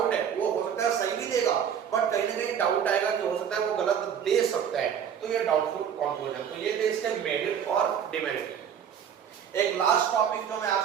है, वो हो सकता है सही भी देगा, बट कहीं ना कहीं डाउट आएगा कि हो सकता है वो गलत दे सकता है, तो ये डाउटफुल कंक्लूजन। तो ये थे इसके मेरिट और डिमेरिट। एक लास्ट टॉपिक जो मैं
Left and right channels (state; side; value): quieter; left; 8.3 dB